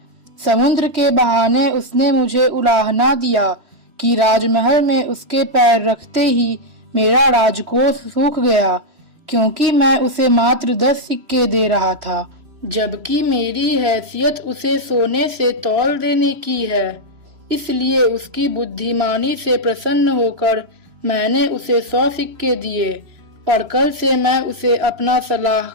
समुद्र के बहाने उसने मुझे उलाहना दिया कि राजमहल में उसके पैर रखते ही मेरा राजकोष सूख गया, क्योंकि मैं उसे मात्र 10 सिक्के दे रहा था, जबकि मेरी हैसियत उसे सोने से तौल देने की है। इसलिए उसकी बुद्धिमानी से प्रसन्न होकर मैंने उसे 100 सिक्के दिए और कल से मैं उसे अपना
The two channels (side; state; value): left; late; 3.0 ms